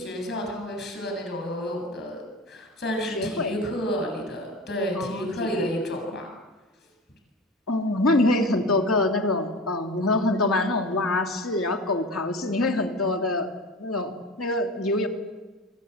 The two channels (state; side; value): normal; both; correlation 0.32